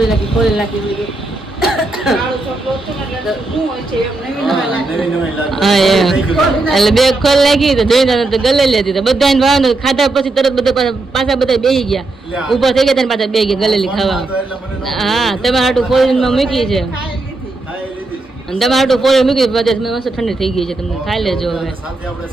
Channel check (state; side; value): quieter; left; 3.1 dB